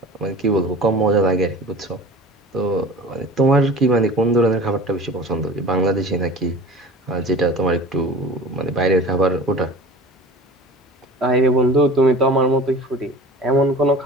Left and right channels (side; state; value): both; normal; correlation 0.40